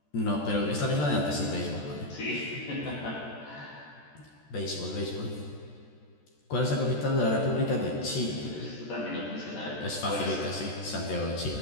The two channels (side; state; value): right; late; 14 ms